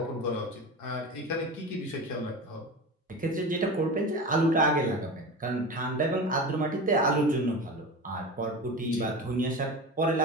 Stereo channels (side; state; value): both; normal; correlation 0.29